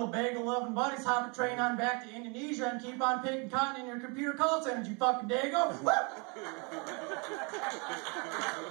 bagel-loving buddies hop a train on back to Indonesia and keep on picking cotton in your computer call centers, you fucking dago?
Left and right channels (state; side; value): quieter; left; 32.3 dB